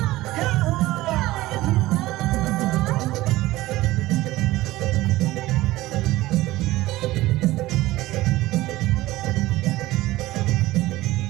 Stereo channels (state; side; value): quieter; left; 17.6 dB